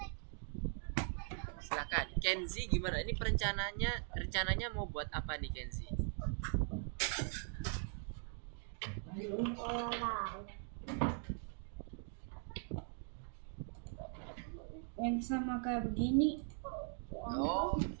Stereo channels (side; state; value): left; silent; 50 dB below the other